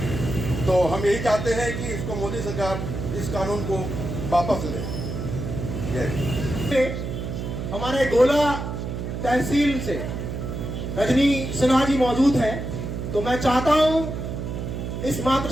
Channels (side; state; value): right; noise; hum, 5 dB below the sound